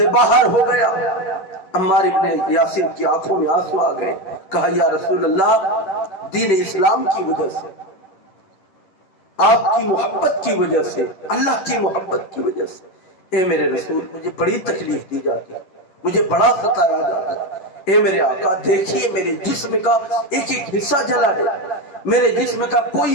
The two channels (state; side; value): late; right; 11 ms